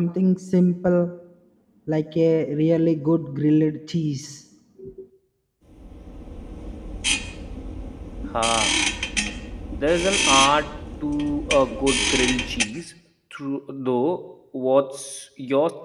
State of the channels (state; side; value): identical; both; correlation 1.00